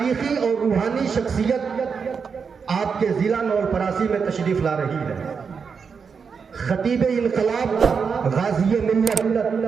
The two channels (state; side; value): quieter; left; 5.9 dB